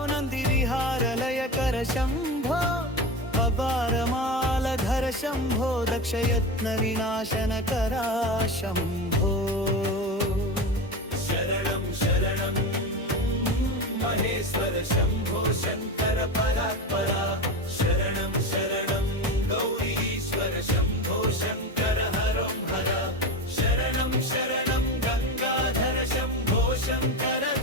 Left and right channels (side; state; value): both; normal; correlation 0.23